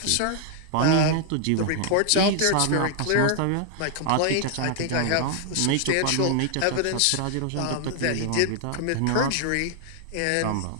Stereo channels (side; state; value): both; different; correlation 0.00